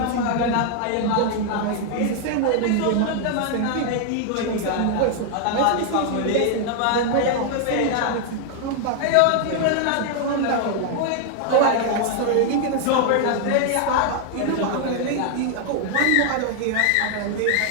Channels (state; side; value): different; both; correlation 0.00